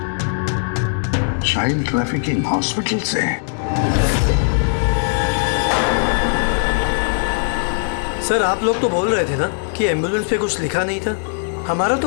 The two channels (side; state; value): right; silent; digital silence